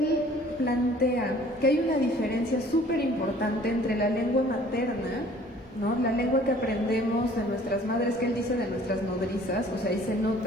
plantea que hay una diferencia súper importante entre la lengua materna, ¿no? La lengua que aprendemos de nuestras madres, que él dice de nuestras nodrizas, o sea, ahí se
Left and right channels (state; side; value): normal; both; correlation 0.53